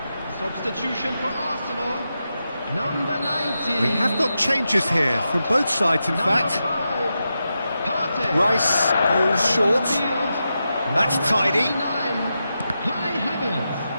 Substitution for Arsenal, number 19. We have got changes here from both sides, in fact. Rice goes short. That's tidy.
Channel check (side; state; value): both; inverted; correlation -0.88